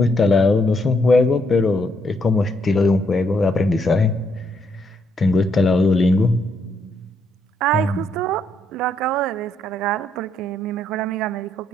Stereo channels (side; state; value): both; normal; correlation 0.75